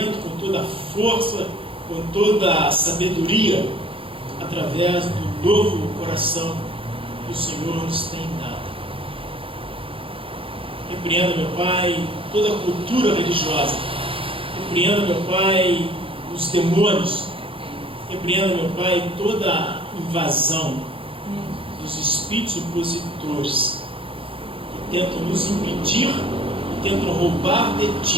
com toda força, com toda a sabedoria, através do novo coração que o Senhor nos tem dado. Repreenda, meu Pai, toda a cultura religiosa. Repreenda, meu Pai, os demônios. Repreenda, meu Pai, toda a invasão dos espíritos opositores que tentam nos impedir, que tentam roubar de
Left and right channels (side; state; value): left; late; 0.26 ms